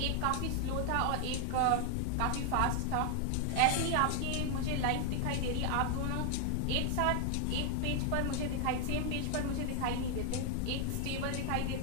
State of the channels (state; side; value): different; both; correlation 0.00